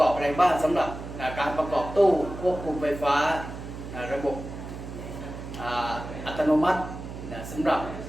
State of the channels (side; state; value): right; noise; hum, 10 dB below the sound